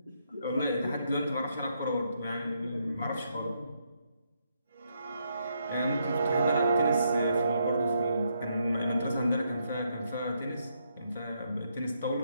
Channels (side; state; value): both; inverted; correlation -0.77